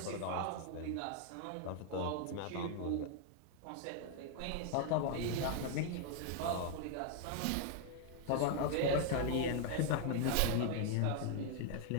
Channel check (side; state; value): both; different; correlation 0.00